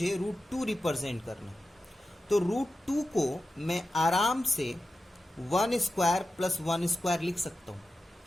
रूट 2 रिप्रेजेंट करना है, तो रूट 2 को मैं आराम से 1 स्क्वायर प्लस 1 स्क्वायर लिख सकता हूं।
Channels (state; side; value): normal; both; correlation 0.92